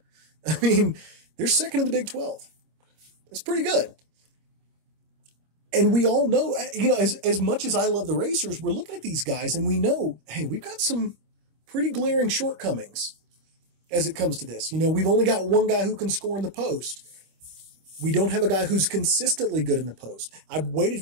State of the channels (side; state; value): left; late; 25 ms